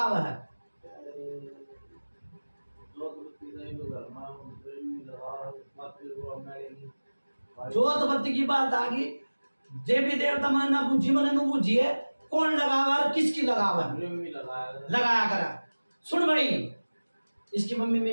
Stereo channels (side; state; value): both; inverted; correlation -1.00